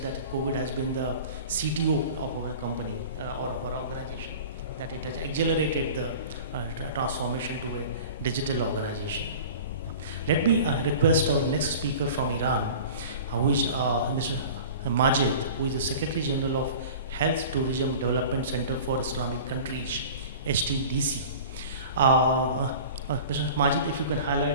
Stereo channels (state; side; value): inverted; both; correlation -0.39